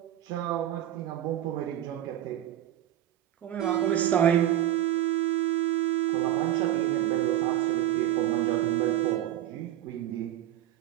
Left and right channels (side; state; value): left; quieter; 12.5 dB